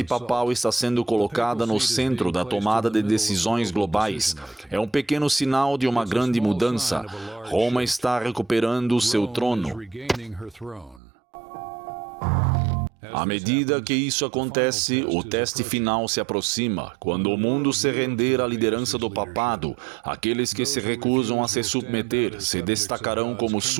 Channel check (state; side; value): drops out; left; at 11.0 s